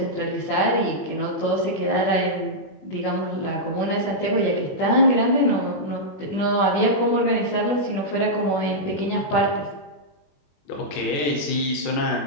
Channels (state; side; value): late; right; 20 ms